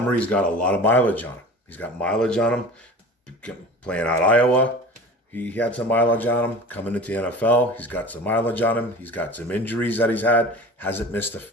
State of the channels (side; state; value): both; normal; correlation 0.37